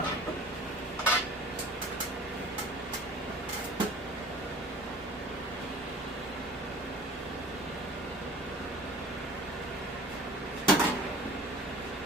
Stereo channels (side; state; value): both; normal; correlation 0.44